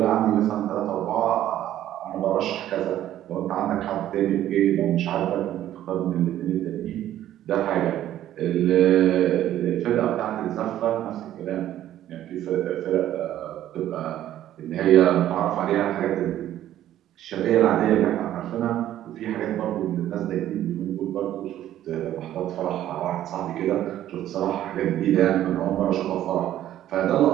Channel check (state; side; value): quieter; left; 12.4 dB